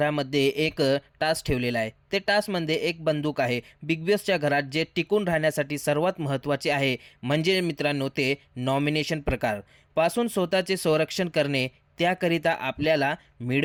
एक टास्क ठेवलेला आहे. ते टास्कमध्ये एक बंदूक आहे. बिग बॉसच्या घरात जे टिकून राहण्यासाठी सर्वात महत्त्वाचे आहे म्हणजे मित्रांनो ते नॉमिनेशन प्रकार पासून स्वतःचे संरक्षण करणे. त्याकरिता आपल्याला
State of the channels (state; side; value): identical; both; correlation 1.00